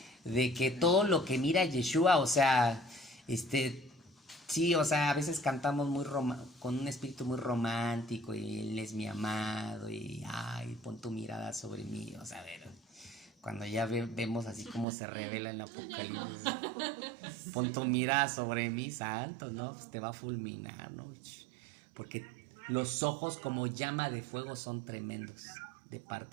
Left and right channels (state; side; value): drops out; left; at 14.9 s